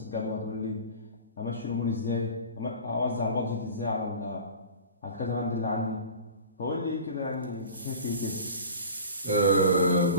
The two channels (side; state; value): both; inverted; correlation -0.37